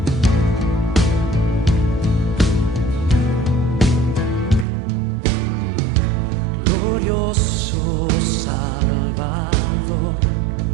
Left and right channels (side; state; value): left; drops out; at 4.7 s